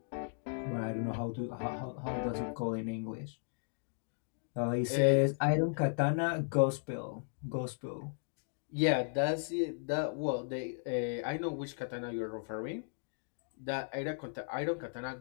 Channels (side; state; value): right; silent; digital silence